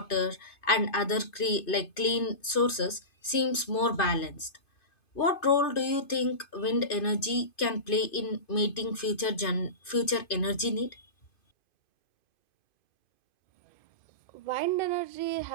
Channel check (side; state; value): right; late; 2.5 ms